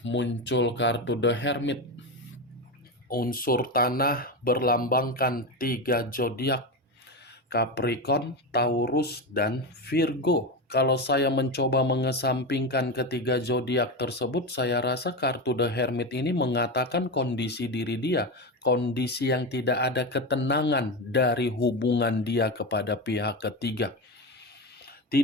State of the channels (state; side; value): normal; both; correlation 0.18